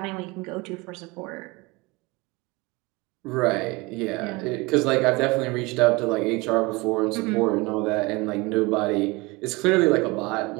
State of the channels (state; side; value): quieter; left; 24.1 dB